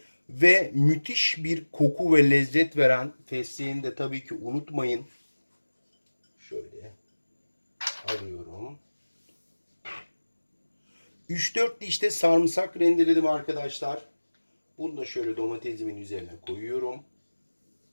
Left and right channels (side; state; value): both; inverted; correlation -1.00